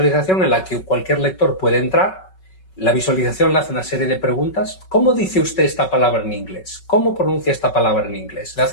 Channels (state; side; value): late; right; 5.3 ms